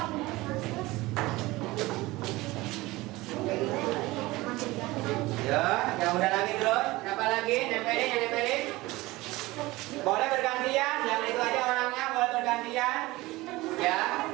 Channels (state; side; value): quieter; left; 20.1 dB